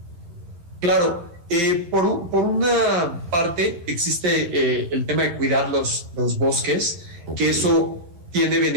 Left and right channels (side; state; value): left; late; 11 ms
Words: Claro, por una parte existe el tema de cuidar los bosques, que eso tiene